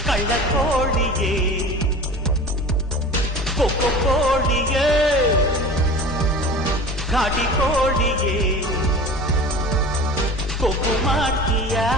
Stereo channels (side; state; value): both; normal; correlation 0.37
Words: ಕಳ್ಳ ಕೋಳಿಯೇ ಕೊಕ್ಕೊ ಕೋಳಿಯೇ ಘಾಟಿ ಕೋಳಿಯೇ ಕೊಬ್ಬು ಮಾಡ್ತೀಯ